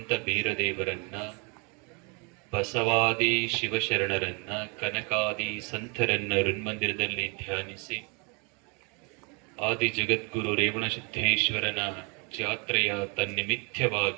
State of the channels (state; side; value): quieter; left; 33.0 dB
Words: ಬೀರದೇವರನ್ನ, ಬಸವಾದಿ ಶಿವಶರಣರನ್ನ, ಕನಕಾದಿ ಸಂತರನ್ನ ಋನ್ಮಂದಿರದಲ್ಲಿ ಧ್ಯಾನಿಸಿ ಆದಿ ಜಗದ್ಗುರು ರೇವಣ ಸಿದ್ದೇಶ್ವರನ ಜಾತ್ರೆಯ